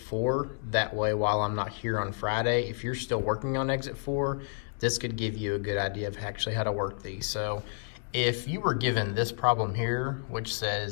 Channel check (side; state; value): right; silent; digital silence